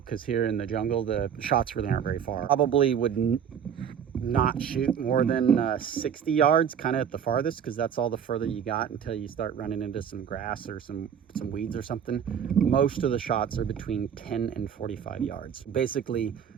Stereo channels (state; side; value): quieter; left; 8.2 dB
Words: because here in the jungle the shots really aren't very far. Probably would not shoot more than 60 yards, kind of at the farthest, because that's all the further you got until you start running into some grass or some weeds or something. Most of the shots are between 10 and 45 yards, basically